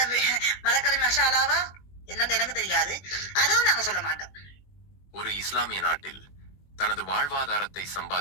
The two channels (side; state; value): right; late; 21 ms